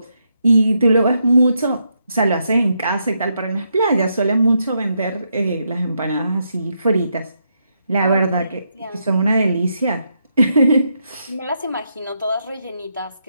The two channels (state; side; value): inverted; both; correlation -0.80